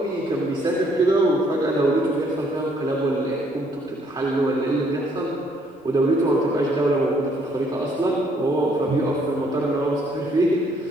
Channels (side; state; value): both; normal; correlation 0.67